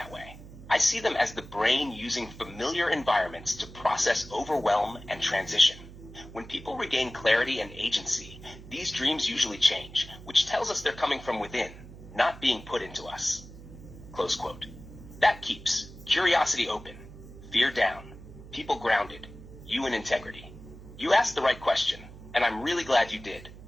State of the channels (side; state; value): right; noise; hum, 16 dB below the sound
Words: way. I see them as the brain using familiar environments to process overwhelm and transition. When people regain clarity and agency, these dreams usually change, which tells us they're coming from within, not being put into us. Close quote. That keeps curiosity open, fear down, people grounded, you in integrity. You asked the right question, and I'm really glad you did.